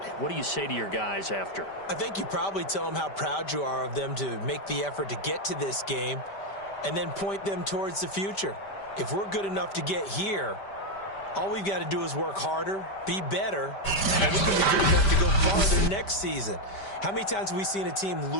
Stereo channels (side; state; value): right; late; 5.1 ms